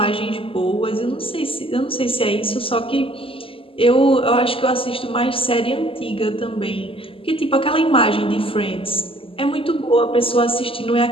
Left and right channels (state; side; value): late; right; 0.26 ms